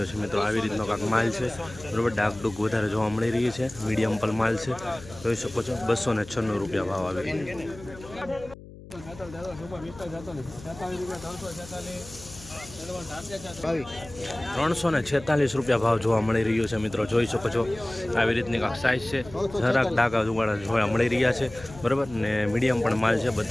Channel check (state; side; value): noise; left; hum, 17 dB below the sound